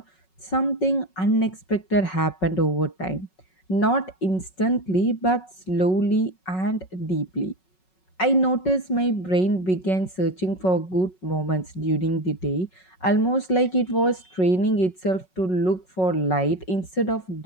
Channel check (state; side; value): late; right; 5.4 ms